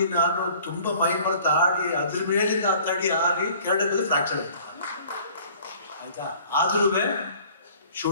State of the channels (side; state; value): both; inverted; correlation -0.52